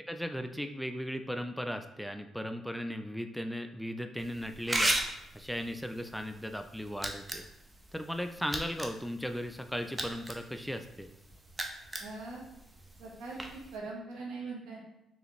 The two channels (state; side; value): normal; both; correlation 0.91